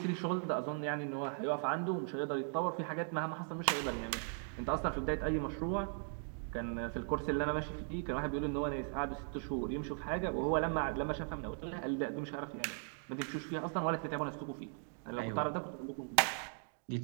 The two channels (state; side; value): silent; left; 52 dB below the other